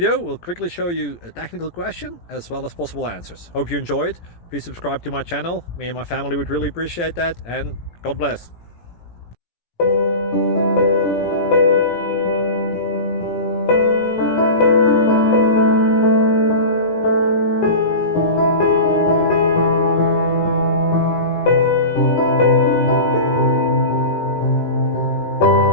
will quickly show you a technical question as well as possible answers. Hope you enjoyed. Please subscribe to my channel. Me and my family would really appreciate that, and God bless.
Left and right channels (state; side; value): late; right; 17 ms